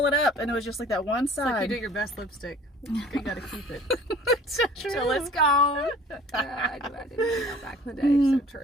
it up, and it was just like that one It's like side. you do your best lipstick. You gotta keep it. So true. So let's go. I didn't know back in the day. So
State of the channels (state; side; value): normal; both; correlation 0.49